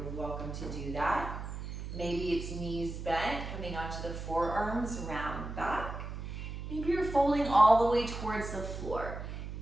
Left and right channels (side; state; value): right; noise; hum, 7 dB below the sound